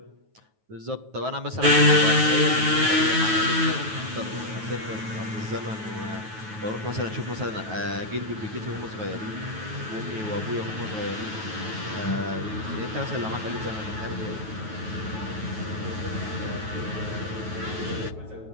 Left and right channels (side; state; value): left; late; 9.3 ms